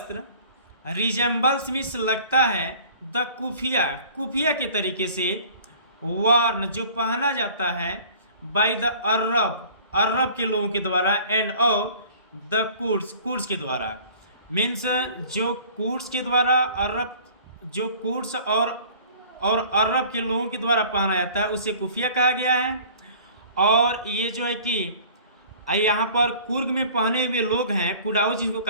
रिजेंबल्स मीन्स लगता है, द कुफिया के तरीके से, वार्न जो पहना जाता है, बाय द अरब के लोगों के द्वारा, एंड और द कुर्ड्स के द्वारा। मीन्स जो कुर्ड्स के द्वारा जो कुर्ड्स और अरब के लोगों के द्वारा पहना जाता है उसे कुफिया कहा गया है। और ये जो है कि यहाँ पर कुर्ग में पहने हुए लोग हैं कुडाउस जिनको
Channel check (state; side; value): inverted; both; correlation -0.48